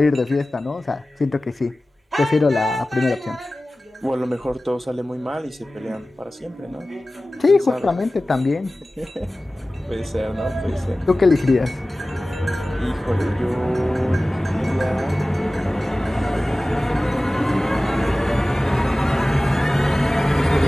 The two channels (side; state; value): both; normal; correlation 0.97